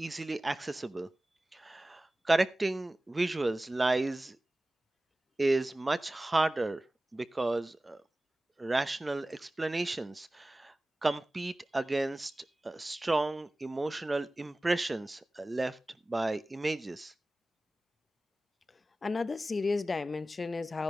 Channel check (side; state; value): both; normal; correlation 0.97